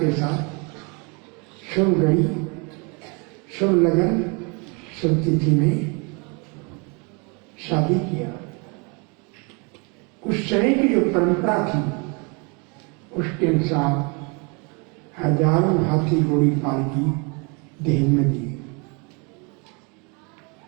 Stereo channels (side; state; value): left; quieter; 32.2 dB